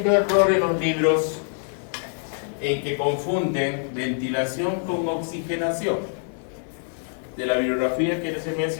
error en los libros en que confunden ventilación con oxigenación. De la bibliografía que les he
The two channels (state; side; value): silent; right; digital silence